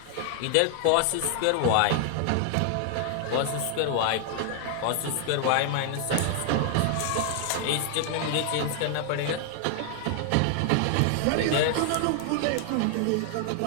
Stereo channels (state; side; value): different; both; correlation 0.00